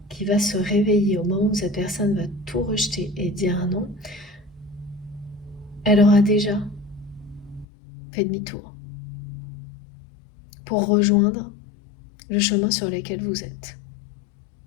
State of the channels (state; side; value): drops out; right; at 7.7 s